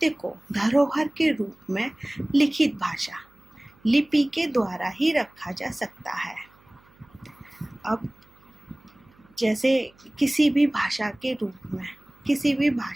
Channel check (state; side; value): noise; right; hum, 30 dB below the sound